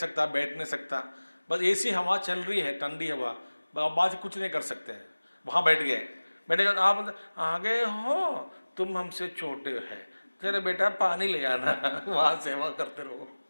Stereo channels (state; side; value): inverted; both; correlation -1.00